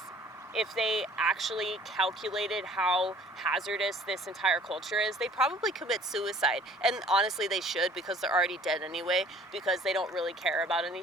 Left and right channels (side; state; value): both; normal; correlation 0.52